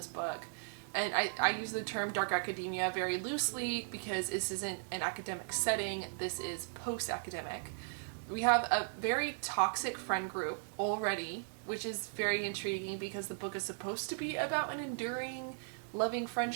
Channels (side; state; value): left; silent; digital silence